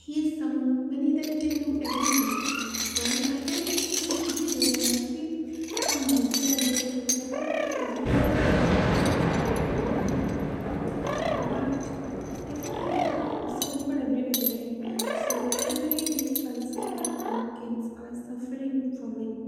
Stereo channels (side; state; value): both; identical; correlation 1.00